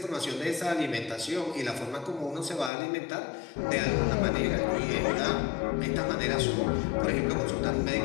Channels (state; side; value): drops out; right; at 2.7 s